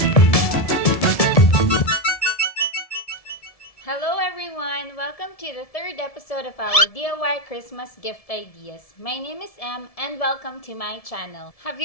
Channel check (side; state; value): right; late; 1.7 ms